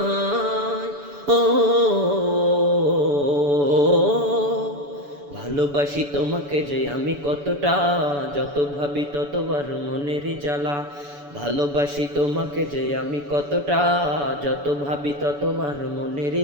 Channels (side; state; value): left; late; 7.0 ms